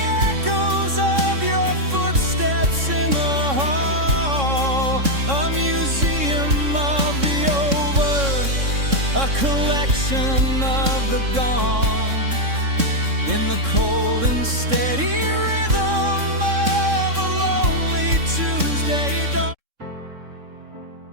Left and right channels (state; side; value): late; left; 3.6 ms